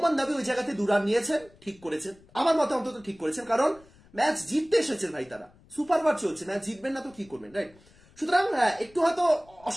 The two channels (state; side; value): noise; left; rumble, 27 dB below the sound